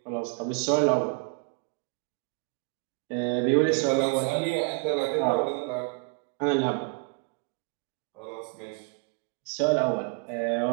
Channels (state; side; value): quieter; left; 33.2 dB